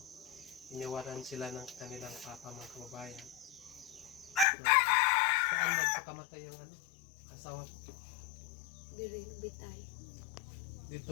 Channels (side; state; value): right; drops out; at 4.5 s